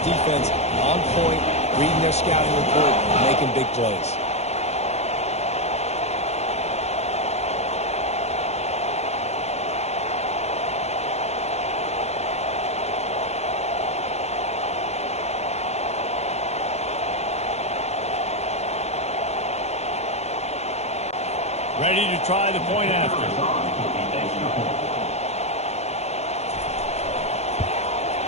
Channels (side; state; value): right; late; 0.31 ms